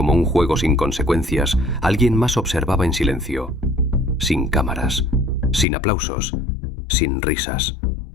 un juego sin consecuencias, alguien más observaba en silencio. Sin cámaras, sin aplausos, sin risas.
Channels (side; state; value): right; drops out; at 5.7 s